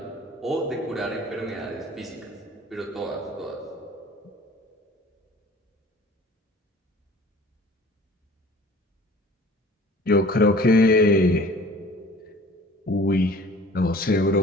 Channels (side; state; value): both; normal; correlation 0.47